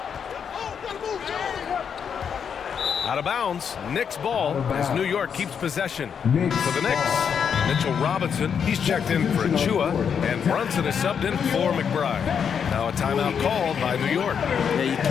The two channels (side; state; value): right; quieter; 7.3 dB